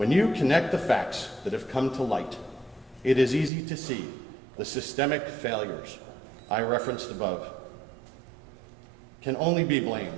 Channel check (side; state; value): left; drops out; at 3.5 s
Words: you connect the facts that have come to light, it is easy to see the systemic failures I referenced above can only be